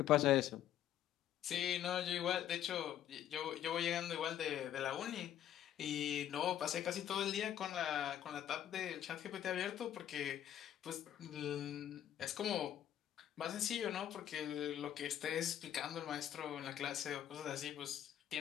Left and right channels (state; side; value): quieter; right; 11.0 dB